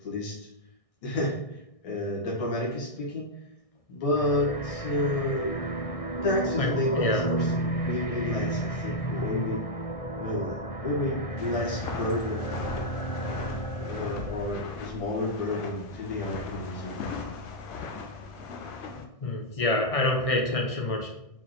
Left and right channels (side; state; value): right; late; 1.6 ms